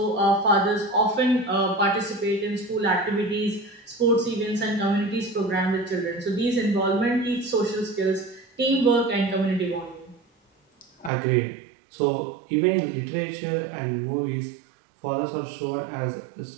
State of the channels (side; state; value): left; drops out; at 11.1 s